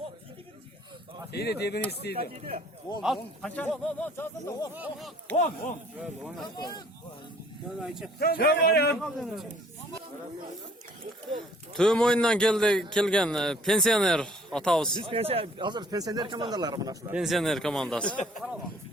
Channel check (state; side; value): normal; both; correlation 0.56